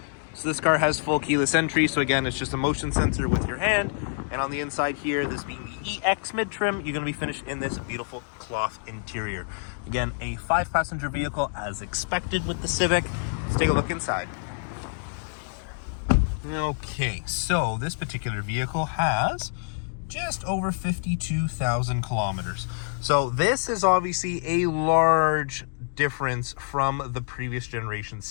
So this car has full keyless entry, so again, it's just a motion sensor with your hand. And on the inside here, this being the EX mid-trim, you're going to be finished in this beautiful cloth interior. Again, a 5-passenger vehicle as expected with the Civic. Let's take a look inside. Okay, so this particular vehicle has just over 52,000 kilometers. So this is obviously a large difference from the previous generation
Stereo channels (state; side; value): silent; right; digital silence